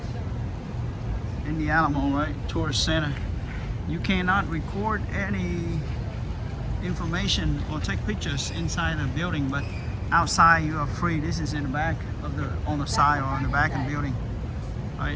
in the Alamo, right? Tourist center. You cannot record any information or take pictures inside the building, but outside you are free. This is in the back of on the side or on the back of the building,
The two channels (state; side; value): identical; both; correlation 1.00